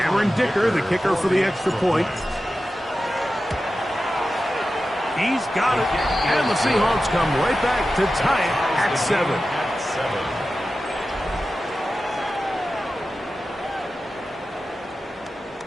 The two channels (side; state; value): both; normal; correlation 0.93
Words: Dicker, the kicker for the extra point. He's got it, and the Seahawks come right back to tie it at 7.